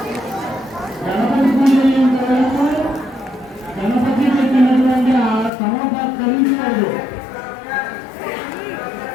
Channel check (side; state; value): right; drops out; at 5.5 s